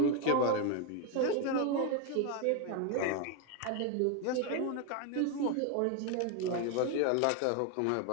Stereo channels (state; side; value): different; both; correlation 0.01